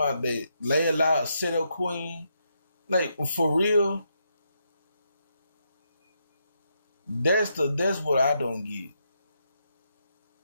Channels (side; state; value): both; inverted; correlation -0.80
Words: that Layla set up queen, like for real. That's what I don't get.